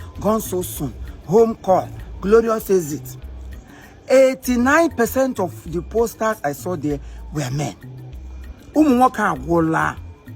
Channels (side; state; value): both; identical; correlation 1.00